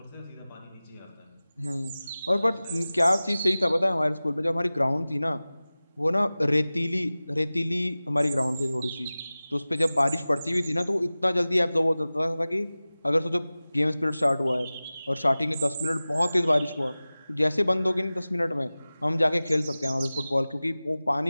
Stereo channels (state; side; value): inverted; both; correlation -0.97